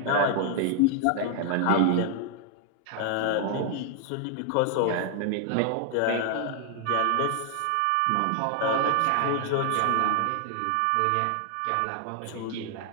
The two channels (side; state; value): both; different; correlation 0.00